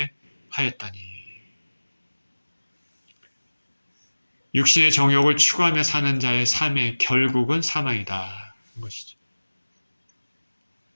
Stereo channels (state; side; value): inverted; both; correlation -1.00